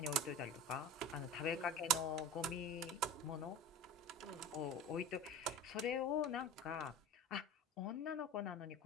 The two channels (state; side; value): normal; both; correlation 0.33